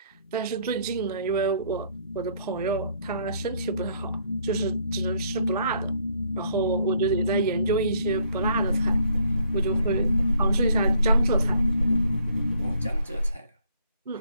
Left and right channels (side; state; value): both; inverted; correlation -0.66